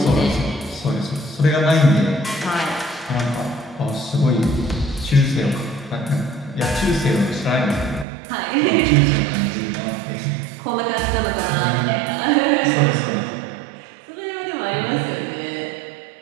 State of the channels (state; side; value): drops out; left; at 8.1 s